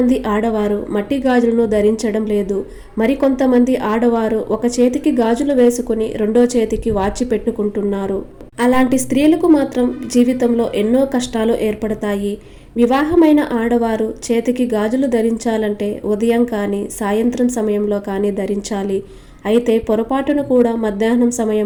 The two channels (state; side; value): identical; both; correlation 1.00